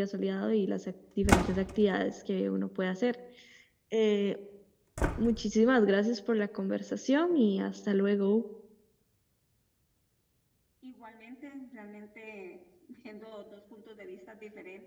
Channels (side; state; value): both; identical; correlation 1.00